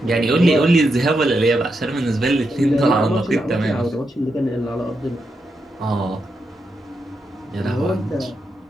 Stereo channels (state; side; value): normal; both; correlation 0.84